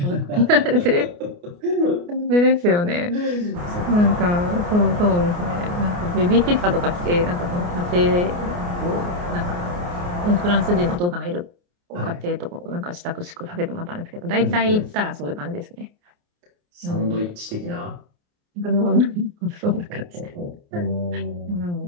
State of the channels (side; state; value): left; late; 29 ms